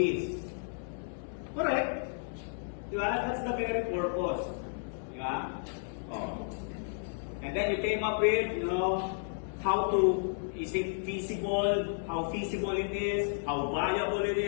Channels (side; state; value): right; silent; 56 dB below the other